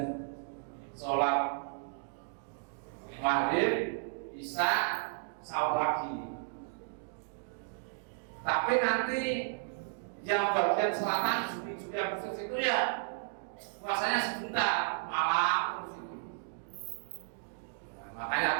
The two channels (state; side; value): silent; left; digital silence